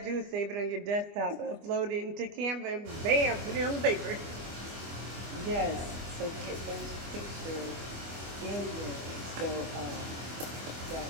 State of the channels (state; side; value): late; left; 25 ms